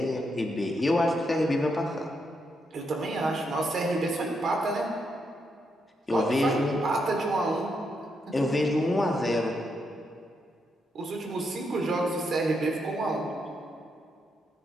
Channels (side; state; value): both; normal; correlation 0.80